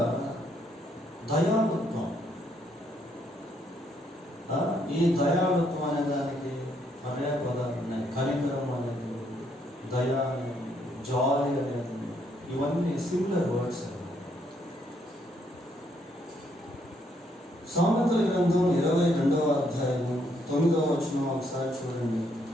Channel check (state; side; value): normal; both; correlation 0.72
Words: దయాళుత్వం. ఈ దయాళుత్వం అనే దానికి పర్యాయ పదాలు ఉన్నాయి. కనికరం అనేది, దయా అనేది, జాలి అనేది, ఇవన్నీ సిమిలర్ వర్డ్స్. సామెతల గ్రంథం 22వ అధ్యాయం 9వ వచనం ఒకసారి చూడండి.